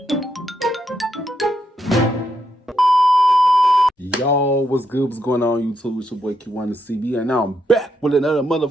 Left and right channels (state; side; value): normal; both; correlation 0.80